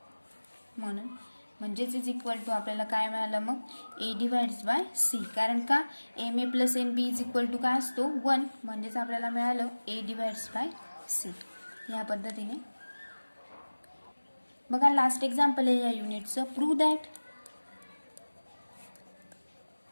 म्हणून. म्हणजेच इज इक्वल टू आपल्याला काय मिळालं मग, ए डिवाइड्स बाय सी. कारण का, M A plus N B is equal to काय असतो, 1. म्हणजेच आपल्याला मिळालं ए डिवाइड्स बाय सी. या पद्धतीने बघा लास्ट एक्झाम्पल आहे या युनिटचं. Prove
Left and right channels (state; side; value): inverted; both; correlation -1.00